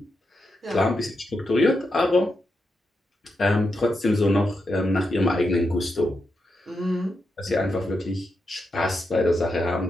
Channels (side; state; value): both; normal; correlation 0.86